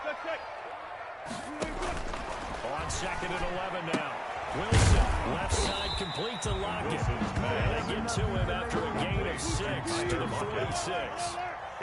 On 2nd and 11 now. Wilson, left side complete to Lockett. And they get to him after a gain of 6 to the 46.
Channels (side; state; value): both; identical; correlation 1.00